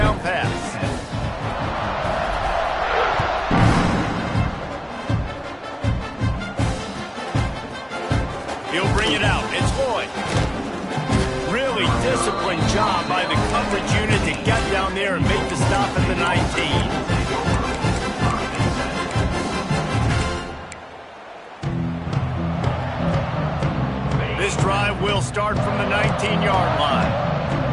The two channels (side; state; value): both; identical; correlation 1.00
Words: pass. He'll bring it out. It's Lloyd. Really disciplined job by the coverage unit to get down there and make the stop at the 19. This drive will start from the 19-yard line.